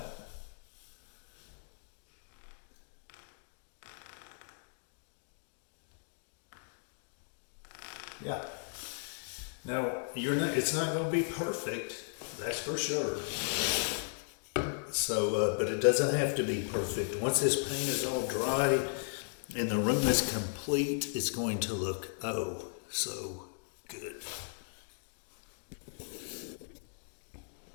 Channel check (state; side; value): silent; right; digital silence